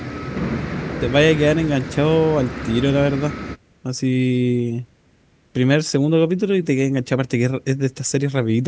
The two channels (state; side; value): identical; both; correlation 1.00